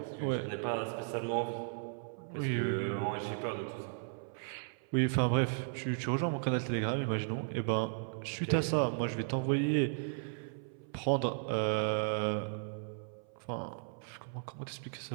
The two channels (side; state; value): left; silent; 54 dB below the other